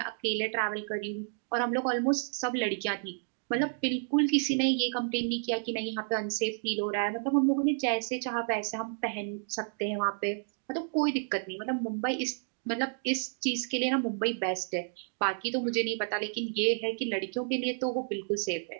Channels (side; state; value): left; silent; digital silence